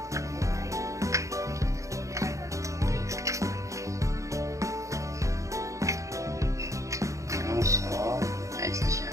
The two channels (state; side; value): late; left; 0.15 ms